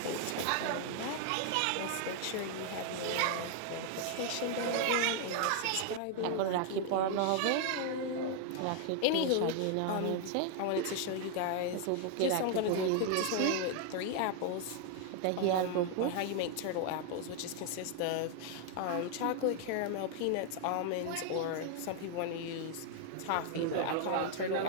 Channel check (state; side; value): different; both; correlation 0.00